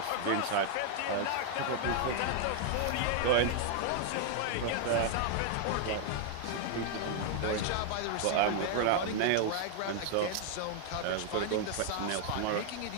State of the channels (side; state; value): both; different; correlation 0.00